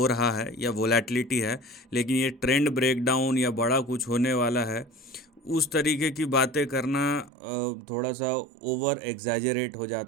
रहा है या वोलेटिलिटी है, लेकिन ये ट्रेंड ब्रेकडाउन या बड़ा कुछ होने वाला है उस तरीके की बातें करना थोड़ा सा ओवर एग्जैजरेट हो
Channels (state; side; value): drops out; left; at 7.3 s